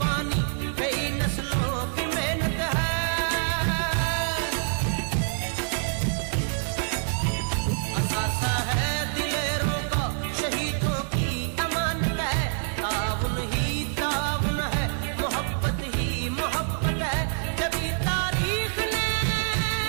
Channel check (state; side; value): silent; left; 61 dB below the other